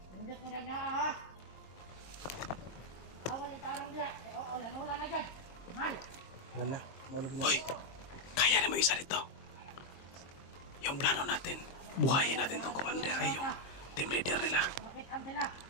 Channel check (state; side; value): late; right; 22 ms